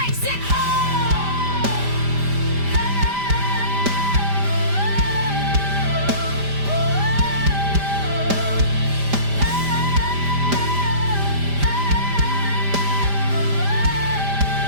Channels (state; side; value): late; left; 5.0 ms